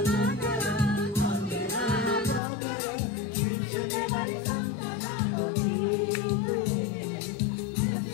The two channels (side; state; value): right; drops out; at 2.4 s